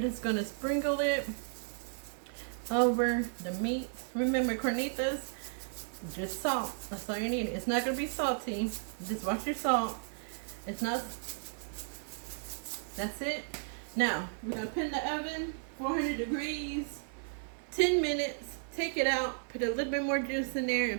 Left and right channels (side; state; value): left; silent; 55 dB below the other